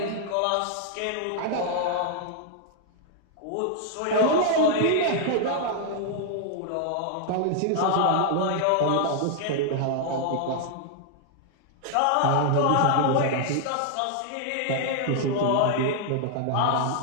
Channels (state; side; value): different; both; correlation 0.00